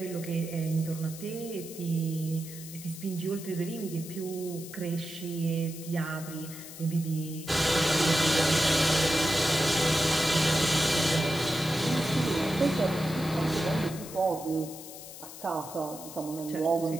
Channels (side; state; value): left; noise; hiss, 14 dB below the sound